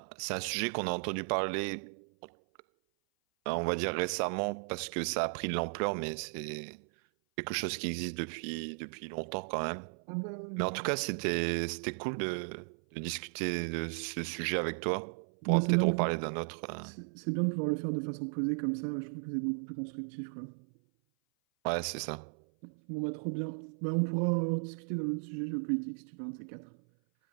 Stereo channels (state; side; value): silent; left; 54 dB below the other